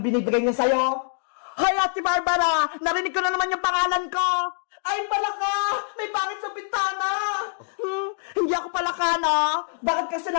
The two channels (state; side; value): silent; right; digital silence